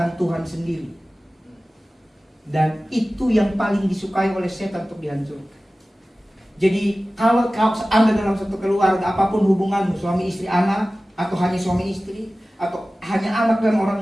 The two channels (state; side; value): normal; both; correlation 0.96